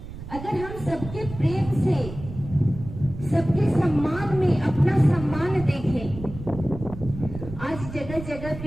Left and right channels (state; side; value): noise; right; rumble, 11 dB below the sound